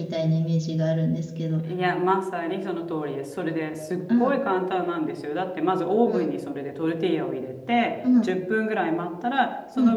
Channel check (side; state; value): both; identical; correlation 1.00